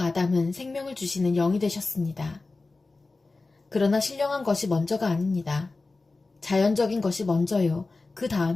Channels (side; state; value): right; quieter; 3.6 dB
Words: 생명을 주시는 영이 되셨습니다. 그러나 신령한 것이 먼저가 아닙니다. 자연적인 것이 먼저요. 그